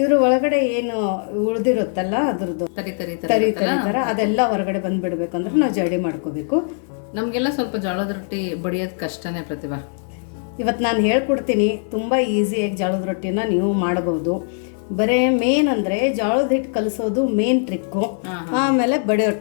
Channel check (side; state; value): right; silent; 60 dB below the other